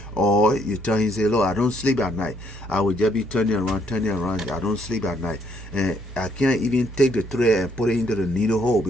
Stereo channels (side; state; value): both; normal; correlation 0.69